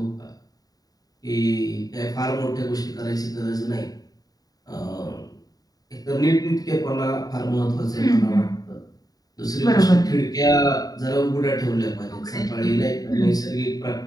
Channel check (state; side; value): late; right; 0.18 ms